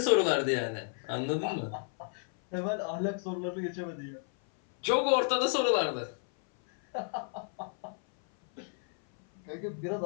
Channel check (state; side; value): silent; right; 57 dB below the other